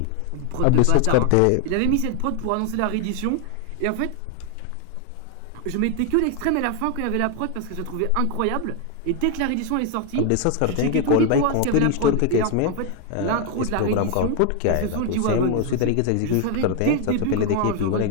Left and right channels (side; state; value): both; different; correlation 0.01